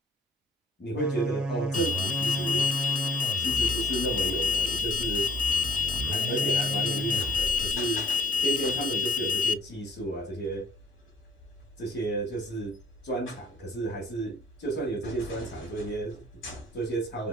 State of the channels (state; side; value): normal; both; correlation 0.60